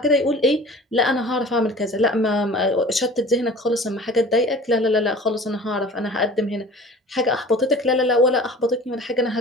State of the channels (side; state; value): both; normal; correlation 0.43